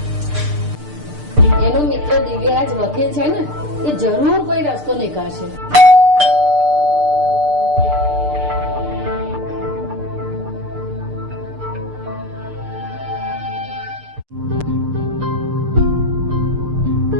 એનો મિત્ર દિવ્યરાજ વકીલ છે ને, એ જરૂર કોઈ રસ્તો નીકાળશે.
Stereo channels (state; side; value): late; left; 6.7 ms